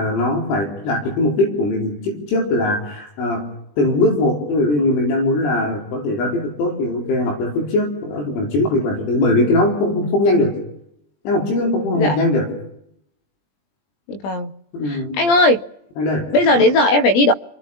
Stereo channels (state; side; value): late; right; 20 ms